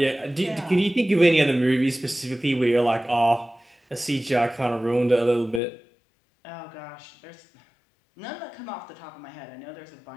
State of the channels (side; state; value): right; drops out; at 5.6 s